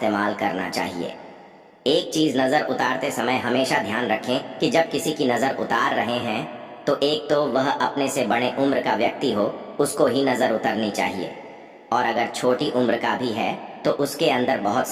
करना चाहिए। एक चीज नजर उतारते समय हमेशा ध्यान रखें कि जब किसी की नजर उतार रहे हैं तो एक तो वह अपने से बड़े उम्र का व्यक्ति हो, उसको ही नजर उतरनी चाहिए। और अगर छोटी उम्र का भी है तो उसके अंदर बहुत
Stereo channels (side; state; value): both; identical; correlation 1.00